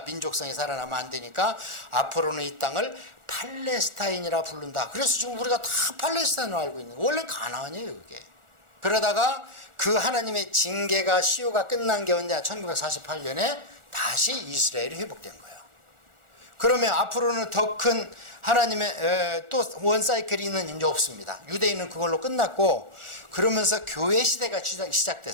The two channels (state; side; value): late; left; 1.4 ms